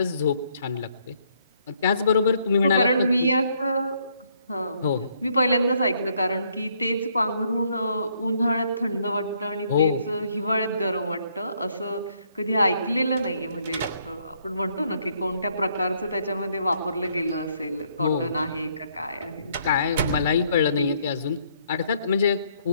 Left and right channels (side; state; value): both; inverted; correlation -0.69